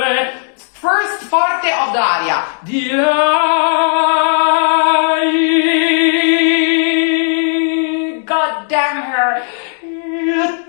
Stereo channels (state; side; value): silent; right; digital silence